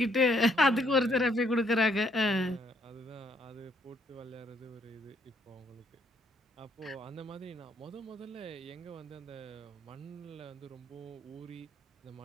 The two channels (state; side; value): normal; both; correlation 0.70